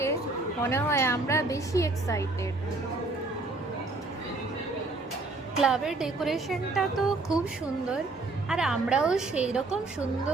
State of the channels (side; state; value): left; quieter; 3.3 dB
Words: মনে হয় আমরা বেশি এক্সাইটেড। ক্লাবের ডেকোরেশনটা তো খুব সুন্দর, আর আমরাও সেই রকম